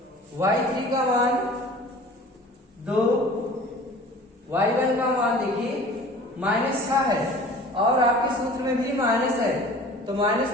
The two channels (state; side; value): normal; both; correlation 0.44